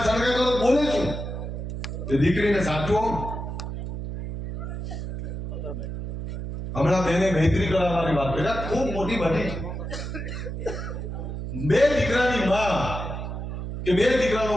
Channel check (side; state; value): right; noise; hum, 6 dB below the sound